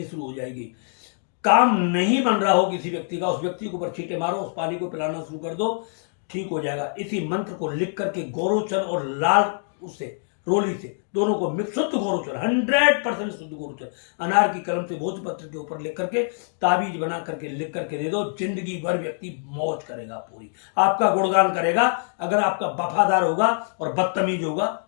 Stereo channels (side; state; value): right; silent; 62 dB below the other